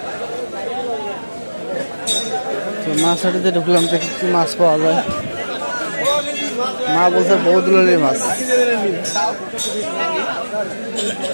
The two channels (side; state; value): both; inverted; correlation -1.00